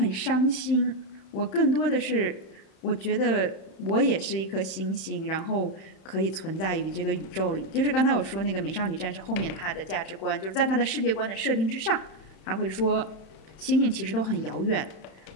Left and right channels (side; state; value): right; late; 31 ms